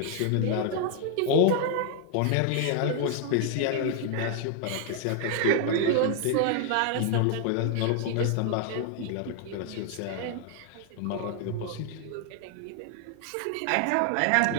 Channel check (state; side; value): different; both; correlation 0.00